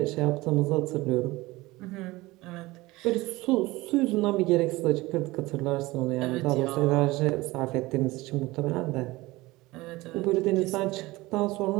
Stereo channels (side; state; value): left; quieter; 20.2 dB